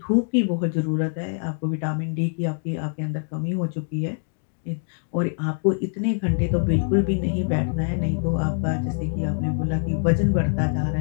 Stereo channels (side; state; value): right; silent; digital silence